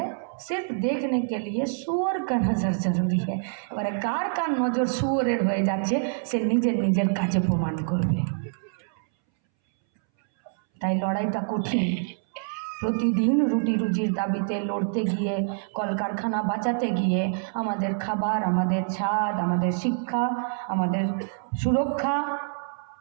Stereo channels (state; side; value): silent; left; 61 dB below the other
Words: सिर्फ देखने के लिए सूअर का नजर जरूरी है। এবারে কার কার নজর সুয়রের হয়ে যাচ্ছে সে নিজের নিজের কাজে প্রমাণ করবে। তাই লড়াইটা কঠিন। প্রতিদিন রুটি রুজির দাবিতে লড়তে গিয়ে, কলকারখানা বাঁচাতে গিয়ে আমাদের খাবার, আমাদের ছাদ, আমাদের শিক্ষা, আমাদের সুরক্ষা,